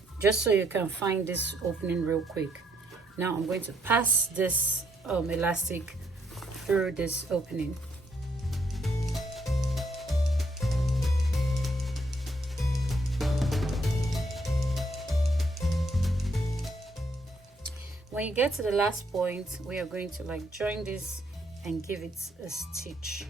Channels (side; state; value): both; normal; correlation 0.72